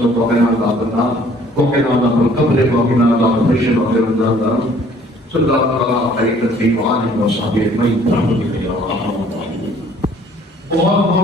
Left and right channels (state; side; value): normal; both; correlation 0.57